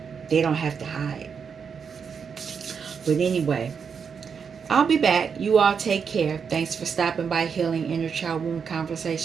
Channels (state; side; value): quieter; left; 6.4 dB